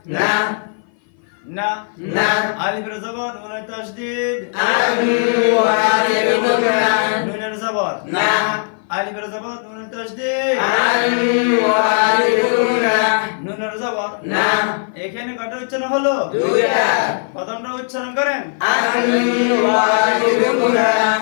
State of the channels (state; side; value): silent; right; 57 dB below the other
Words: না না না আলিফের জবর নুনের তাসদীদ আন ওয়াজিব গুন্না নুনের জবর না আলিফের জবর নুনের তাসদীদ আন ওয়াজিব গুন্না নুনের জবর না এখানে কয়টা উচ্চারণ হলো দুইটা প্রথমটা উচ্চারণ করেন আন ওয়াজিব গুন্না